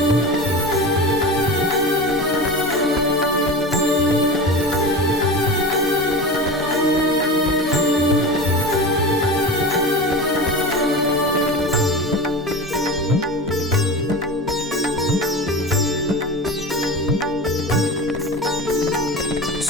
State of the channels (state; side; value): normal; both; correlation 0.29